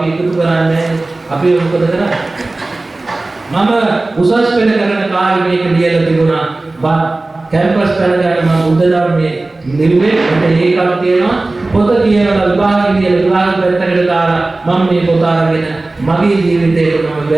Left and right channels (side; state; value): left; quieter; 3.1 dB